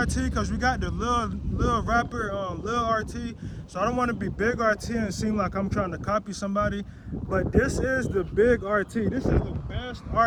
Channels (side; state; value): both; identical; correlation 1.00